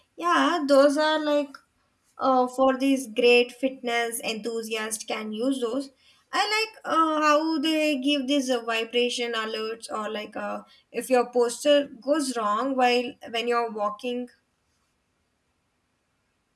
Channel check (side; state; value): both; identical; correlation 1.00